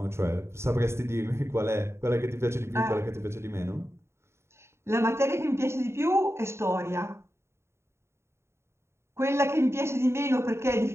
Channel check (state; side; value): late; left; 0.13 ms